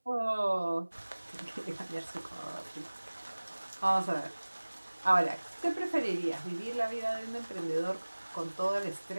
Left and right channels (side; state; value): both; inverted; correlation -1.00